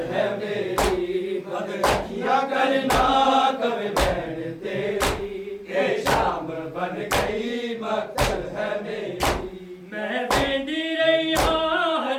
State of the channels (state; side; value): identical; both; correlation 1.00